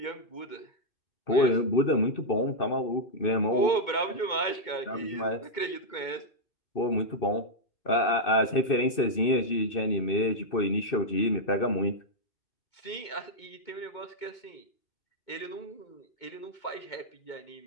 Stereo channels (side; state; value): right; late; 2.6 ms